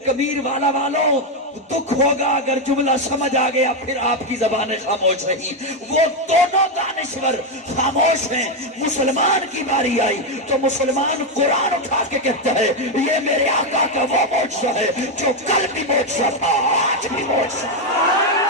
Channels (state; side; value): normal; both; correlation 0.05